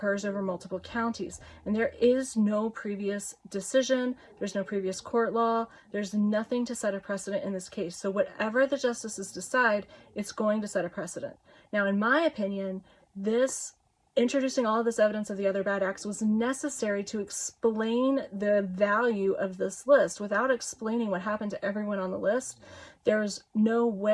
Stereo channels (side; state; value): both; identical; correlation 1.00